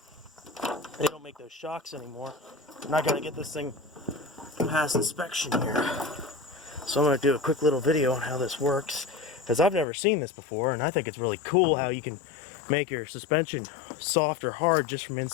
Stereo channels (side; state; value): right; drops out; at 9.9 s